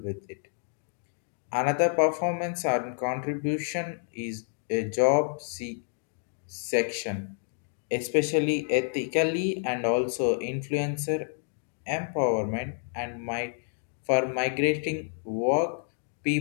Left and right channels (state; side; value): silent; right; digital silence